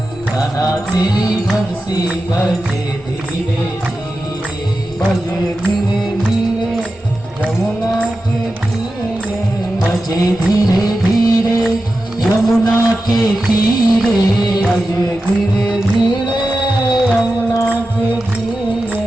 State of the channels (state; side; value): normal; both; correlation 0.92